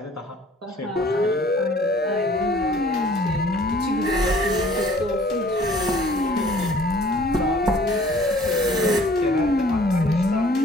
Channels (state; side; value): normal; both; correlation 0.54